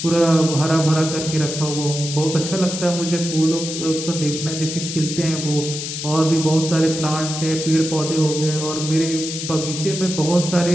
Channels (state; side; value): noise; left; hiss, 6 dB below the sound